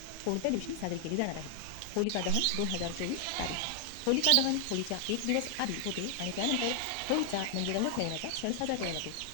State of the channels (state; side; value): different; both; correlation 0.00